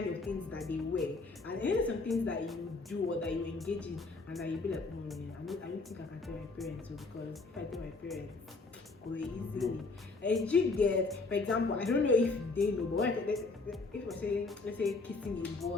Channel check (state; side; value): quieter; right; 3.7 dB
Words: of things that they were. And then some things that you do or that you engage in and that you be like, I don't think I can tell my parents, because if I tell my parents, go easily. And you get, for example, I don't know if they know, but if we're saying, let's say kissing a